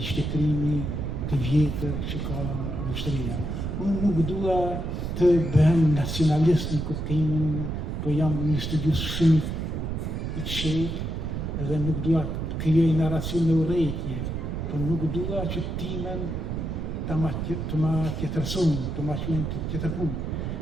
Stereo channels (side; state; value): right; noise; rumble, 3 dB below the sound